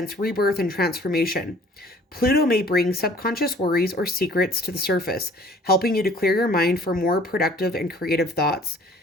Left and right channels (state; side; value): normal; both; correlation 0.54